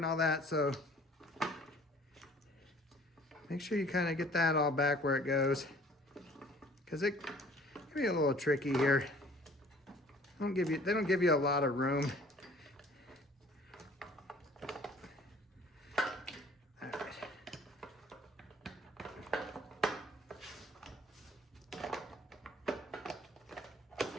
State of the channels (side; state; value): both; normal; correlation 0.53